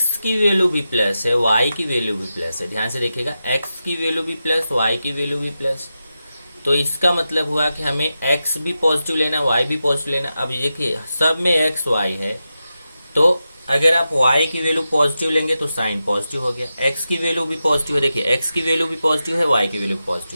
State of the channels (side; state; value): both; inverted; correlation -0.91